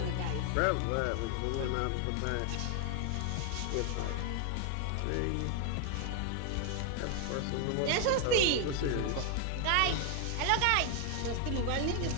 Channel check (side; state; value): both; different; correlation 0.00